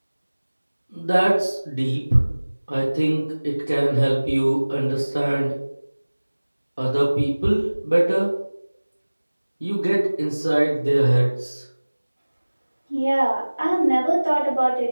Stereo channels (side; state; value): both; inverted; correlation -1.00